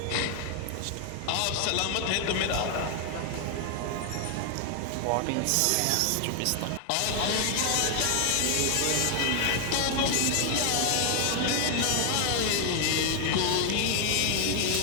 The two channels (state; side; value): different; both; correlation 0.00